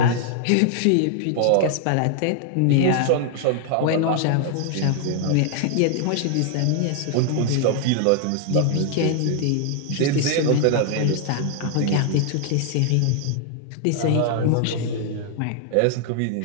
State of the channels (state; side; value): different; both; correlation 0.00